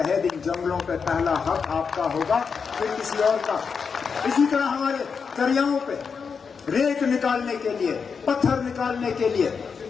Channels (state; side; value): quieter; right; 5.8 dB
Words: ان جنگلوں پہ پہلا حق آپ کا ہوگا، پھر کسی اور کا۔ اسی طرح ہمارے دریاؤں پہ ریت نکالنے کے لیے، پتھر نکالنے کے لیے،